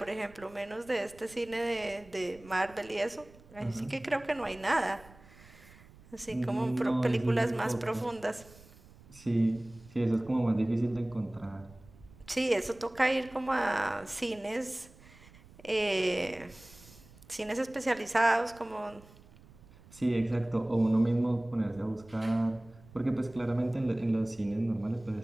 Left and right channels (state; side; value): noise; right; rumble, 23 dB below the sound